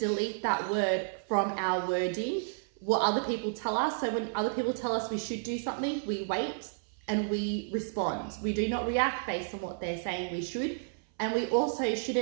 that word from our wording, what other people tell us. So when other people tell us we should do something, we wait and we respond. We do not react based on what they're saying we should. And we also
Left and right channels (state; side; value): silent; left; 57 dB below the other